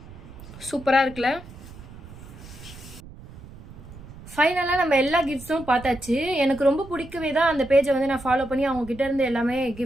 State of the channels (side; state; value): right; noise; rumble, 17 dB below the sound